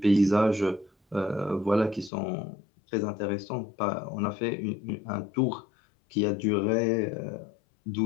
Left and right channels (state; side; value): drops out; right; at 2.1 s